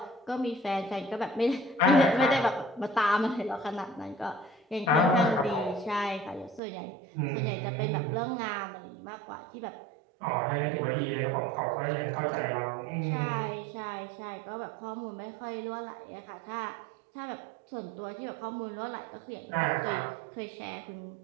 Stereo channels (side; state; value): left; drops out; at 6.6 s